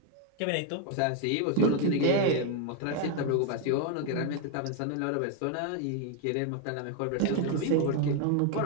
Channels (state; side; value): different; both; correlation 0.01